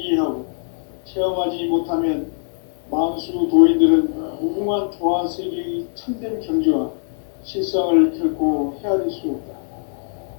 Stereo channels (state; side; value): silent; right; 65 dB below the other